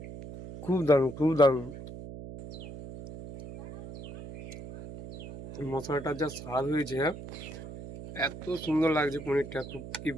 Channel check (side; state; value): right; noise; hum, 12 dB below the sound